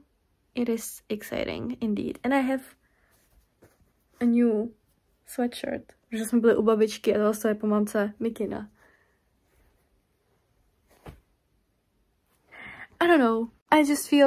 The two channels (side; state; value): both; identical; correlation 1.00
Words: It is exciting, indeed. And I have a new sweatshirt, protože jsme byli u babičky a to je po mamce mikina. I don't know. I just